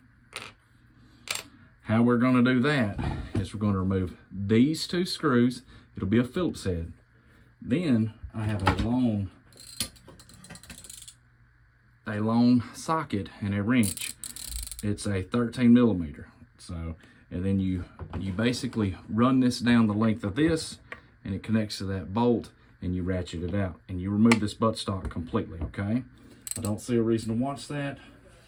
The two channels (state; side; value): identical; both; correlation 1.00